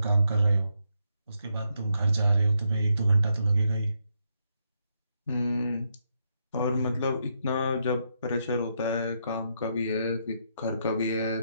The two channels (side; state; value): both; inverted; correlation -0.79